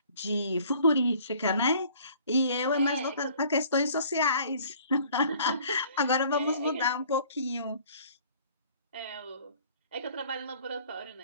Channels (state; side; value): inverted; both; correlation -0.54